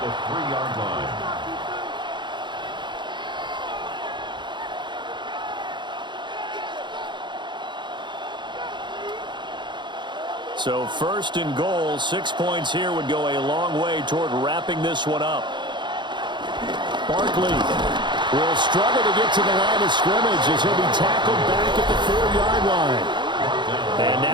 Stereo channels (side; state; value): left; late; 0.22 ms